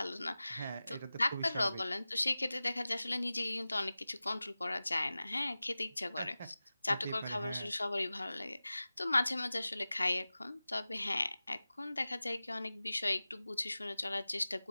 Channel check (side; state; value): both; inverted; correlation -0.97